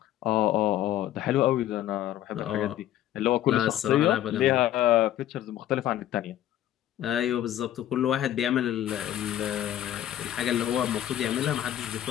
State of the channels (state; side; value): quieter; right; 12.4 dB